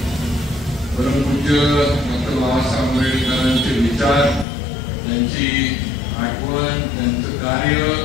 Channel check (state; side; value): drops out; right; at 4.5 s